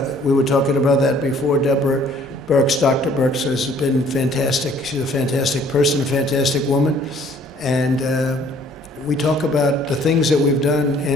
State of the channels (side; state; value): both; normal; correlation 0.58